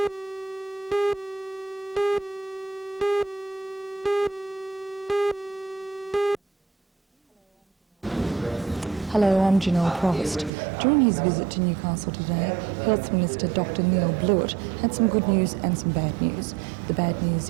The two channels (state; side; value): drops out; left; at 10.5 s